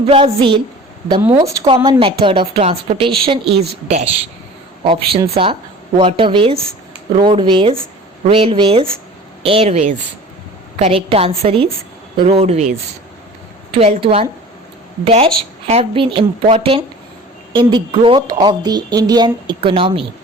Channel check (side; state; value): both; normal; correlation 0.42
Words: Brazil, the most common method of transportation is dash. Options are waterways, roadways, railways, airways. Correct answer is roadways. 12th one. Dash have been important in the growth of the Indian economy.